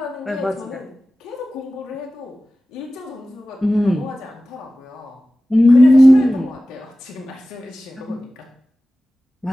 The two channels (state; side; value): normal; both; correlation 0.96